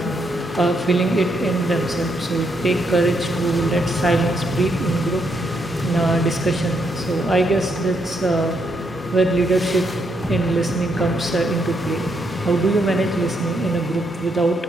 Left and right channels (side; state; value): both; normal; correlation 0.77